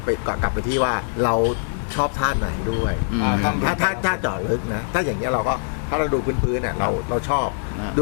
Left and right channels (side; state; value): right; silent; digital silence